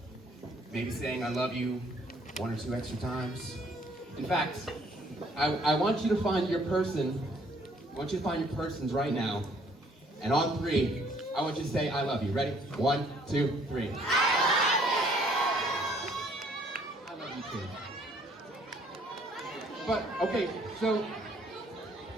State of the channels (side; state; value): both; normal; correlation 0.62